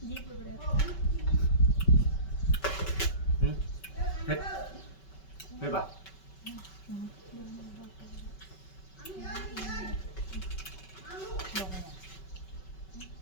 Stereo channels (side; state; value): right; late; 5.3 ms